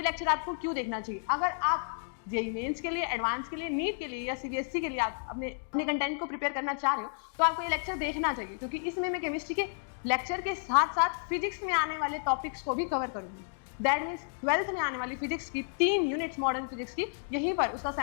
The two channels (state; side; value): silent; right; digital silence